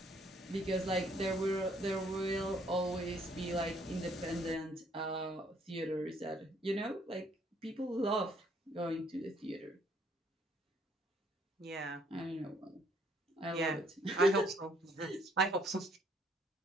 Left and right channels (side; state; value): both; normal; correlation 0.65